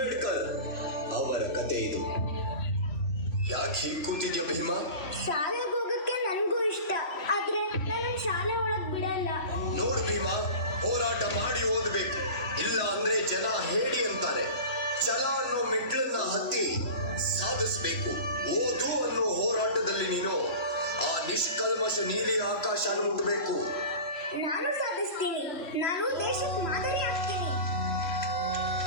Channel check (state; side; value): late; right; 2.9 ms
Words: ಅವರ ಕತೆ ಇದು. ಯಾಕೆ ಹೀಗೆ ಕೂತಿದ್ಯಾ ಭೀಮಾ? ಶಾಲೆಗೆ ಹೋಗಕ್ಕೆ ನನಗೂ ಇಷ್ಟ, ಆದ್ರೆ ನಾನು ಶಾಲೆ ಒಳಗ್ ಬಿಡಲ್ಲ. ನೋಡು ಭೀಮಾ, ಹೋರಾಟ ಮಾಡಿ ಓದಬೇಕು, ಇಲ್ಲ ಅಂದ್ರೆ ಜನ ಹೇಳಿ ಅಂತಾರೆ. ಛಲ ಅನ್ನೋ ಮೆಟ್ಲನ್ನ ಹತ್ತಿ ಸಾಧಿಸಬೇಕು. ಓದು ಅನ್ನೋ ಹೋರಾಟದಲ್ಲಿ ನೀನು ಆ ನಿಷ್ಕಲ್ಮಶ ನೀಲಿ ಆಕಾಶನ ಮುಟ್ಟಬೇಕು. ನಾನು ಸಾಧಿಸ್ತೀನಿ. ನಾನು ದೇಶಕ್ಕೆ ಮಾದರಿ ಆಗ್ತೀನಿ.